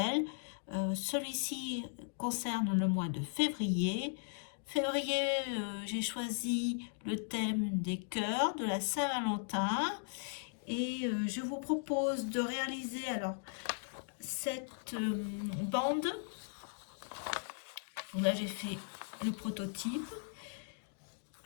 Celui-ci concerne le mois de février. Février, j'ai choisi le thème des cœurs de la Saint-Valentin et je vous propose de réaliser alors cette bande. Donc là, j'ai fait le prototype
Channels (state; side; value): silent; right; digital silence